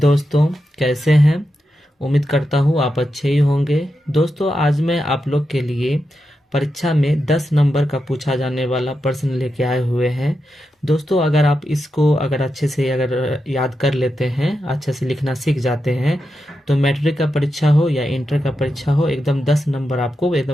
कैसे हैं। उम्मीद करता हूँ आप अच्छे ही होंगे। दोस्तों आज मैं आप लोग के लिए परीक्षा में 10 नंबर का पूछा जाने वाला प्रश्न लेके आए हुए हैं। दोस्तों अगर आप इसको अच्छे से याद कर लेते हैं, अच्छे से लिखना सीख जाते हैं, तो मैट्रिक का परीक्षा हो या इंटर का परीक्षा हो, एकदम 10 नंबर आपको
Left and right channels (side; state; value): both; normal; correlation 0.88